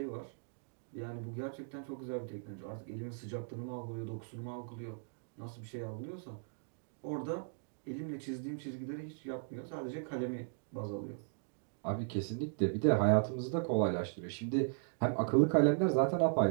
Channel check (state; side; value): silent; left; digital silence